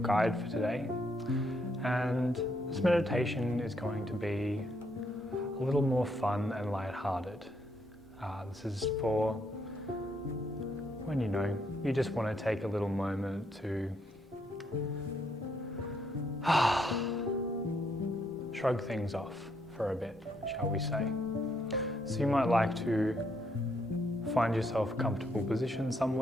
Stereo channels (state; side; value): normal; both; correlation 0.74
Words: for today, and this meditation is going to be a little more fun and lighthearted. This is for when you just want to take a little moment to shrug things off for a bit, shall we say. So you might like to find yourself a comfortable position